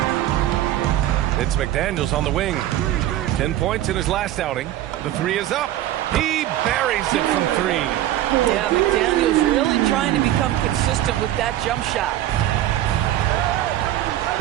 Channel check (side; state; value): left; quieter; 13.4 dB